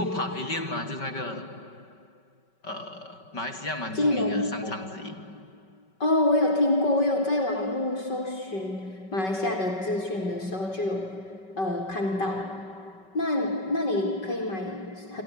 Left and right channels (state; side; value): late; right; 5.3 ms